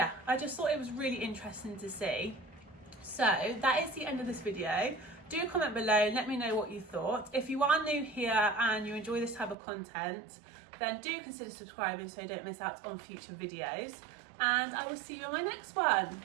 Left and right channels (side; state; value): left; drops out; at 9.6 s